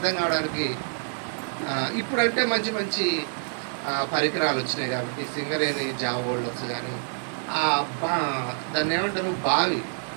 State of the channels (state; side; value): silent; left; digital silence